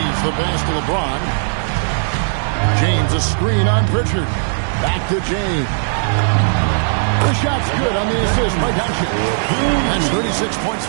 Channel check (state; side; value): silent; left; digital silence